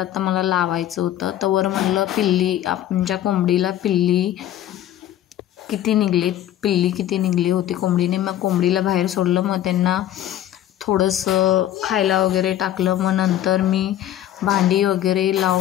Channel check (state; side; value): quieter; right; 12.2 dB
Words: मला लावायचं होतं. तवर म्हणलं आमच्या कोंबडीला पिल्ली किती निघली होती कोंबडीने. मग कोंबडीला बाहेर सोडलं. मग त्यांना थोडंसं खायला वगैरे टाकलं. मग नंतर मी भांडी वगैरे